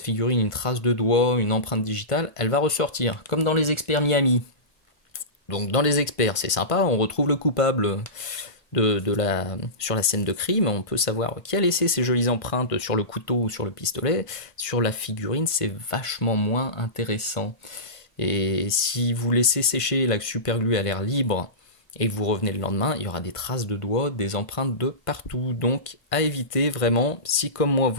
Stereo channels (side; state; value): right; late; 1.5 ms